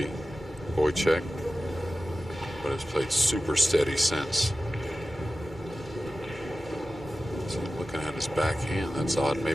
Wojciech, but has played super steady since. So looking at his backhand, that's odd,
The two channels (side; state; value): both; normal; correlation 0.95